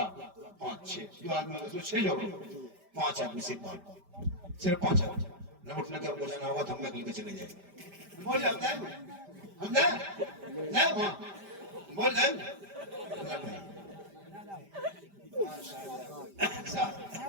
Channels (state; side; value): late; left; 5.1 ms